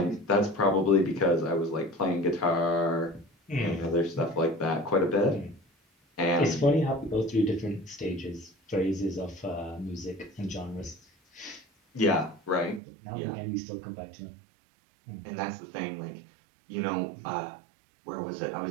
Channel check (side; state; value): left; drops out; at 12.8 s